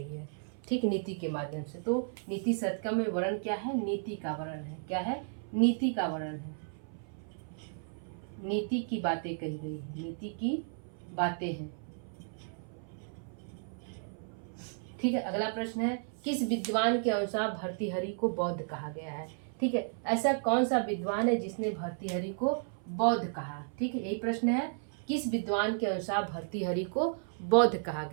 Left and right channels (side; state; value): left; silent; 55 dB below the other